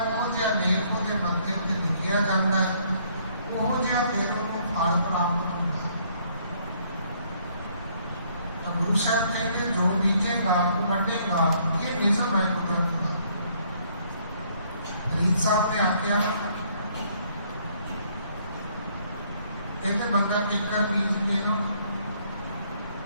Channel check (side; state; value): both; inverted; correlation -0.65